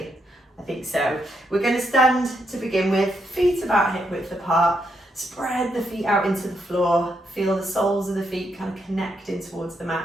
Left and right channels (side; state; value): both; normal; correlation 0.79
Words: I think so. We're going to stand to begin with, feet about hip width apart. Spread the feet out into the floor, feel the soles of the feet kind of connecting towards the